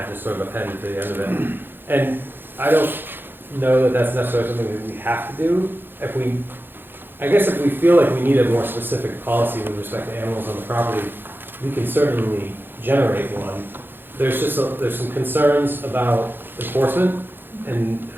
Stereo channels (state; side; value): late; left; 0.099 ms